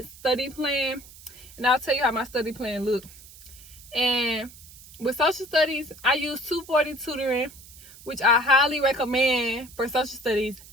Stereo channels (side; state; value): right; noise; hiss, 20 dB below the sound